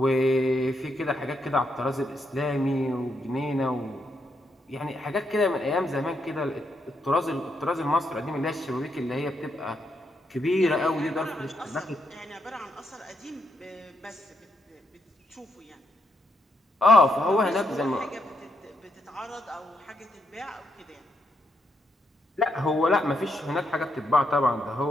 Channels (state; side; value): normal; both; correlation 0.79